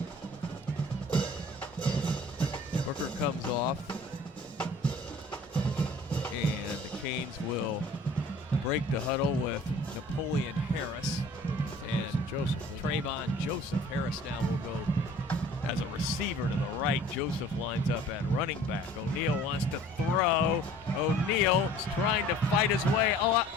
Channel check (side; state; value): both; normal; correlation 0.49